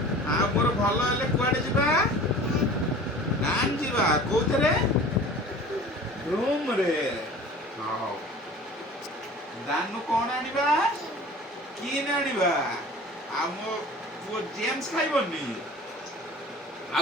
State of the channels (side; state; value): both; normal; correlation 0.43